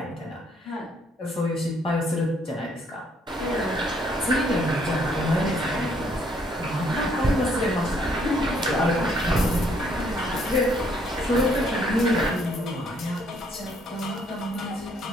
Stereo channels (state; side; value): normal; both; correlation 0.67